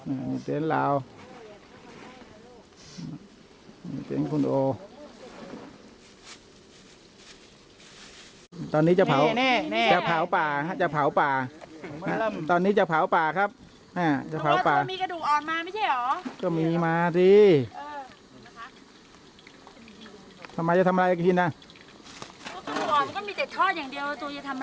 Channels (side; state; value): both; identical; correlation 1.00